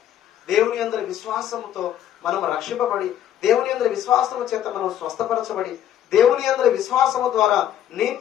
దేవుని అందరి విశ్వాసముతో మనం రక్షింపబడి, దేవుని అందరి విశ్వాసము చేత మనం స్వస్థపరచబడి, దేవుని అందరి విశ్వాసము ద్వారా నీ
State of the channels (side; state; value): right; quieter; 10.9 dB